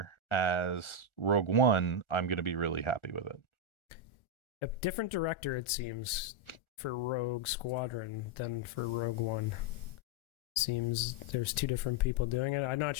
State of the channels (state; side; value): late; right; 1.4 ms